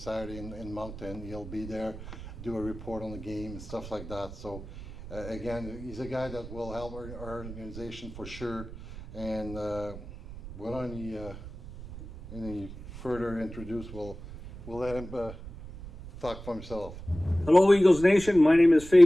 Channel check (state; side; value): noise; right; rumble, 13 dB below the sound